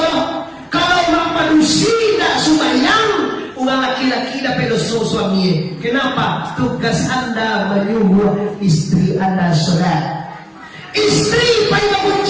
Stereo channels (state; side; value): identical; both; correlation 1.00